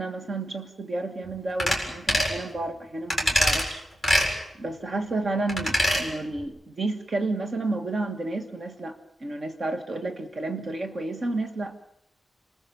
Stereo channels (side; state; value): both; normal; correlation 0.87